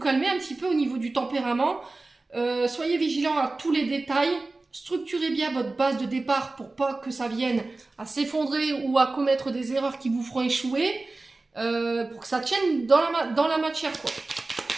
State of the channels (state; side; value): quieter; left; 3.3 dB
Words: un petit peu au niveau du tempérament. Soyez vigilant à tous les détails. Structurez bien votre base de départ pour pas que ça vienne à s'effondrer ou à commettre des erreurs qui vous feront échouer. Pour que ça tienne dans la matière, quoi.